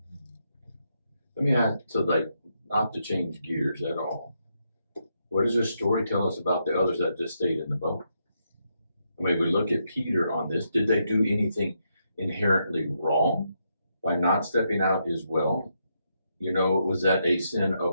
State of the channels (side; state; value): both; inverted; correlation -0.80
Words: Let me ask, so like, not to change gears at all. What does this story tell us about the others that just stayed in the boat? I mean, we look at Peter on this. Did they do anything inherently wrong by not stepping out as well? Was that a sin